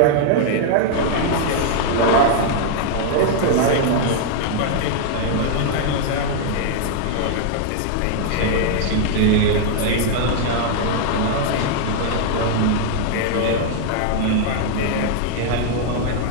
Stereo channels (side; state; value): both; different; correlation -0.01